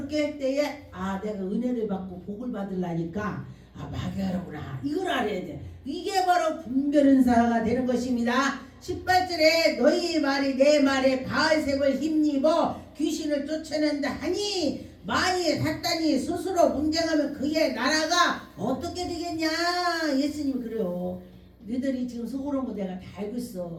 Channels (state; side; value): identical; both; correlation 1.00